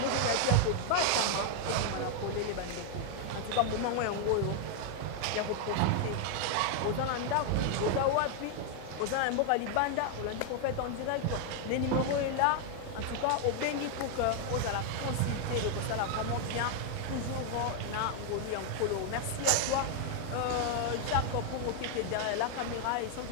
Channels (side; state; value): both; different; correlation 0.00